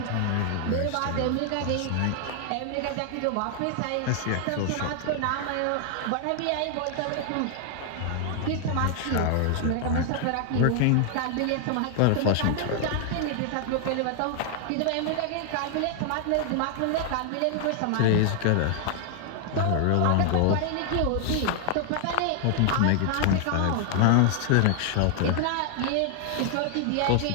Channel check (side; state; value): both; different; correlation 0.00